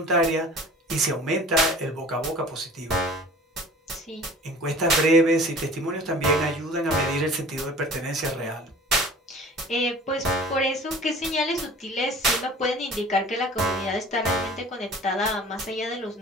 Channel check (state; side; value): normal; both; correlation 0.44